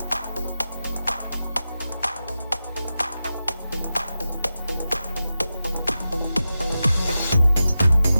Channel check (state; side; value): inverted; both; correlation -0.92